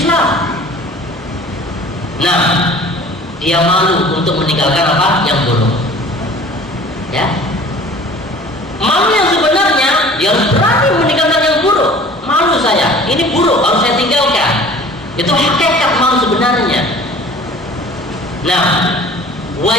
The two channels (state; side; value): normal; both; correlation 0.46